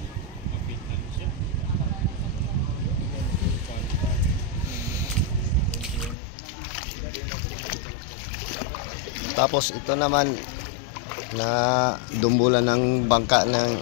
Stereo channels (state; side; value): drops out; right; at 6.2 s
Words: Tapos ito naman na dumbulan ng bangka